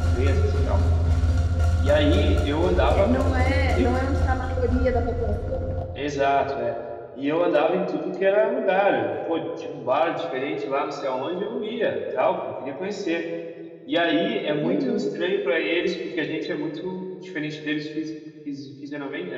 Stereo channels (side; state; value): both; identical; correlation 1.00